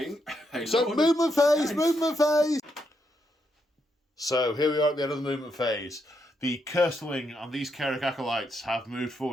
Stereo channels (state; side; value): normal; both; correlation 0.80